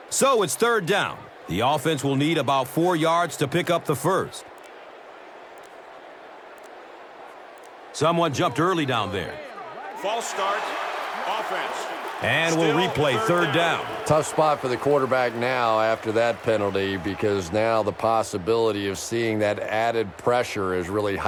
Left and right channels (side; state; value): both; identical; correlation 1.00